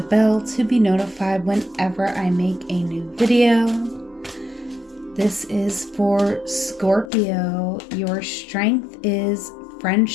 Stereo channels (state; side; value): drops out; right; at 7.1 s